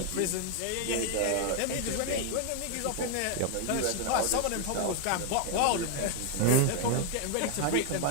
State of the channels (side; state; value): both; different; correlation 0.00